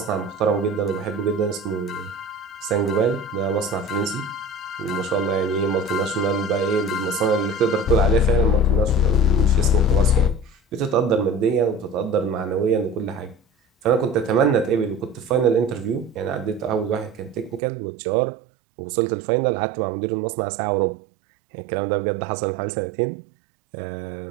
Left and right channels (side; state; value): left; drops out; at 17.6 s